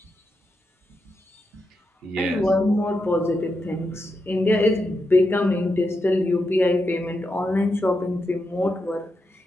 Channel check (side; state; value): both; normal; correlation 0.86